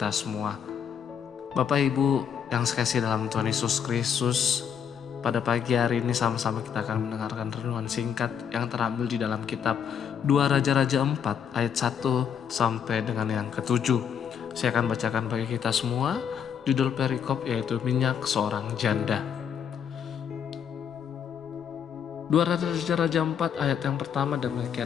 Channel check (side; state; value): right; quieter; 7.9 dB